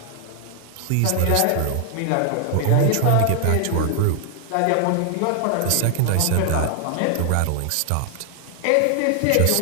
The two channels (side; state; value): both; different; correlation 0.00